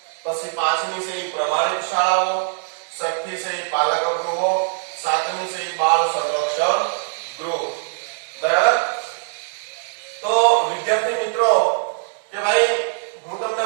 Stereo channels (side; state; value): left; silent; digital silence